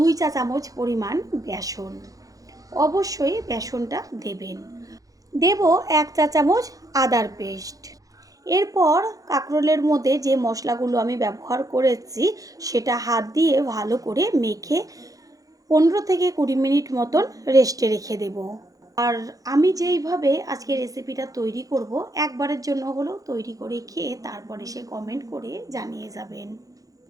চা চামচ পরিমাণ বেসন, অবশ্যই বেসনটা দেবেন। দেব 1 চা চামচ আদার পেস্ট। এরপর কাঁকরোলের মধ্যে যে মশলাগুলো আমি ব্যবহার করেছি সেটা হাত দিয়ে ভালো করে মেখে 15 থেকে 20 মিনিট মতন রেস্টে রেখে দেব। আর আমি যেইভাবে আজকে রেসিপিটা তৈরি করব, একবারের জন্য হলেও তৈরি করে খেয়ে তারপরে সে কমেন্ট করে জানিয়ে যাবেন।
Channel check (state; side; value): late; left; 0.17 ms